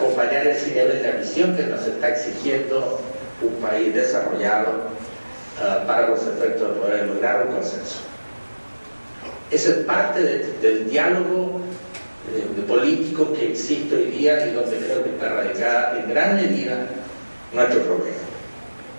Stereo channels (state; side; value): inverted; both; correlation -1.00